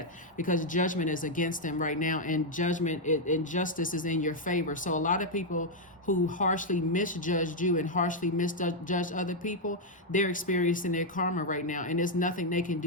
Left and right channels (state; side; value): normal; both; correlation -0.01